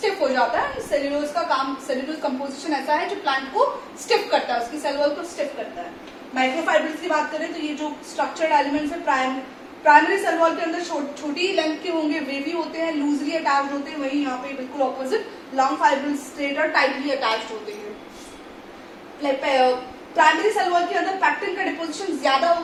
हो जाता है. सेल्यूलोज का काम, सेल्यूलोज कंपोजिशन ऐसा है जो प्लांट को स्टिफ करता है, उसकी सेल वॉल को स्टिफ करता है. माइक्रोफाइब्रिल्स की बात करें तो ये जो स्ट्रक्चर्ड एलिमेंट्स है प्राइमरी सेल वॉल के अंदर छोटी लेंथ के होंगे, वेवी होते हैं, लूजली अटैच्ड होते हैं. वही यहाँ पे बिल्कुल ऑपोजिट लॉन्ग फाइब्रिल्स स्ट्रेट और टाइटली अटैच्ड होते हैं. प्राइमरी सेल वॉल के अंदर पैक्टिन का डिपोजिशन ज्यादा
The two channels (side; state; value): both; identical; correlation 1.00